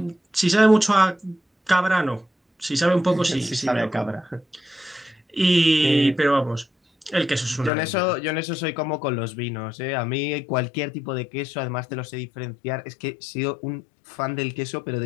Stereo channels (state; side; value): drops out; right; at 7.7 s